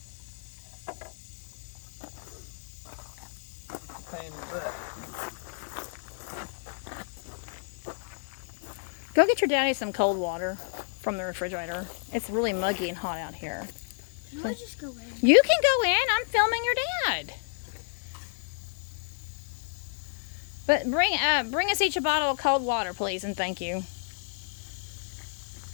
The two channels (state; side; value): silent; right; digital silence